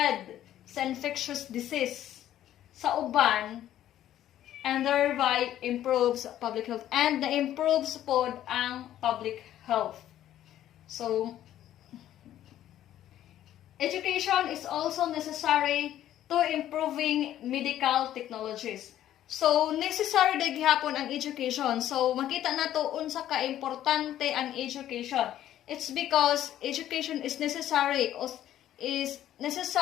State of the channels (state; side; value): quieter; right; 12.2 dB